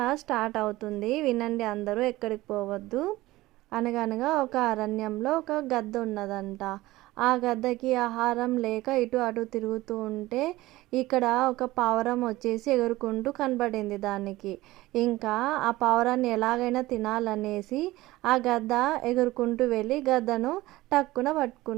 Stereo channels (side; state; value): left; quieter; 18.1 dB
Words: స్టార్ట్ అవుతుంది, వినండి అందరూ, ఎక్కడికి పోవద్దు. అనగనగా ఒక అరణ్యంలో ఒక గద్ద ఉన్నదంట. ఆ గద్దకి ఆహారం లేక ఇటు అటు తిరుగుతూ ఉంటే ఇక్కడ ఒక పావురం వచ్చేసి ఎగురుకుంటూ కనబడింది దానికి. ఇంకా ఆ పావురాన్ని ఎలాగైనా తినాలనేసి ఆ గద్ద ఎగురుకుంటూ వెళ్ళి గద్దను టక్కున